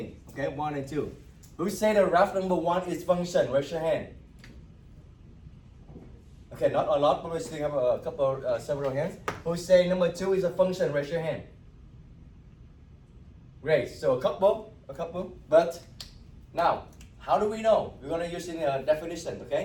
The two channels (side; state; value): both; identical; correlation 1.00